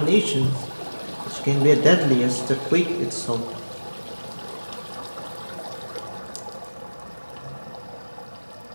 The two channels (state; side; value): inverted; both; correlation -1.00